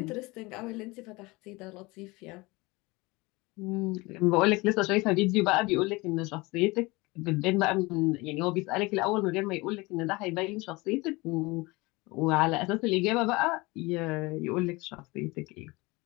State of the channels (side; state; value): right; quieter; 23.6 dB